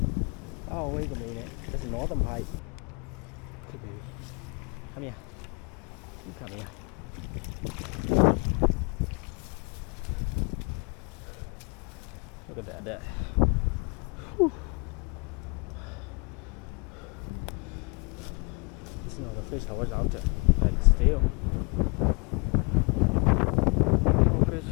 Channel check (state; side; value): quieter; right; 32.0 dB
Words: Oh, wait a minute. There's a northern pike. Okay, baby. Come here. You come here. Look at that. Whew. This is not the fish I was after. Like still. Oh, fish.